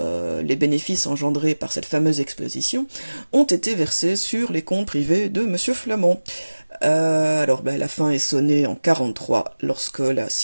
les bénéfices engendrés par cette fameuse exposition ont été versés sur les comptes privés de Monsieur Flamand. La fin est sonnée en 1943 lorsque la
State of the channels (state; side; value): inverted; both; correlation -1.00